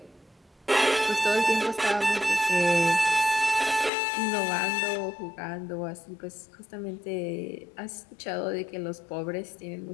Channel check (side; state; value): right; drops out; at 3.9 s